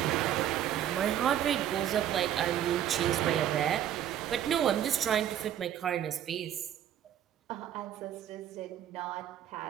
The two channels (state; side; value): quieter; left; 10.7 dB